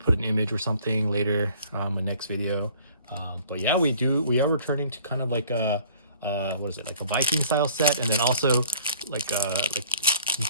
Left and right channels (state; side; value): inverted; both; correlation -0.53